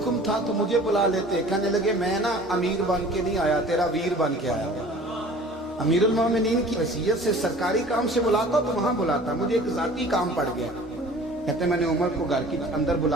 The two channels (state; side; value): normal; both; correlation 0.46